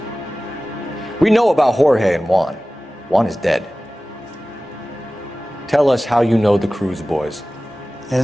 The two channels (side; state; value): both; normal; correlation 0.97